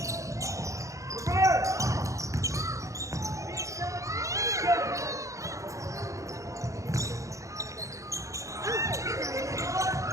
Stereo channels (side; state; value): left; late; 0.15 ms